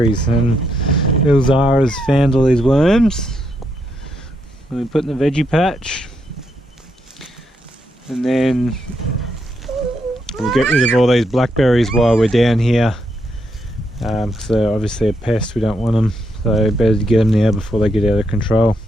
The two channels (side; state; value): both; normal; correlation 0.79